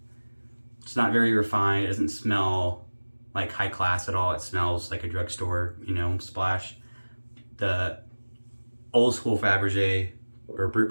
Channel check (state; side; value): inverted; both; correlation -1.00